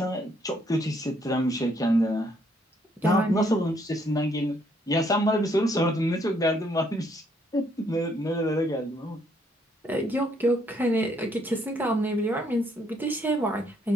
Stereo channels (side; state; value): both; normal; correlation 0.69